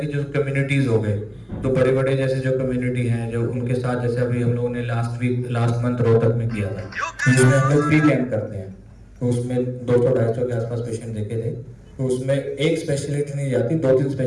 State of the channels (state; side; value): identical; both; correlation 1.00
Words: कि जो कम्युनिटीज हो गए तो बड़े बड़े जैसे जो कम्युनिटी हैं जो उनके साथ, जैसे अभी हम लोगों ने लास्ट मंथ रोहतक में किया था, जिसमें हम लोग फ्री कैंप करते हैं तो उसमें 200-250 के आसपास पेशेंट देखे थे। तो उसमें एक स्पेशलिटी नहीं जाती, 2-3